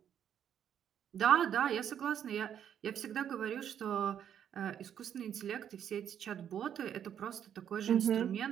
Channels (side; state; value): left; quieter; 9.3 dB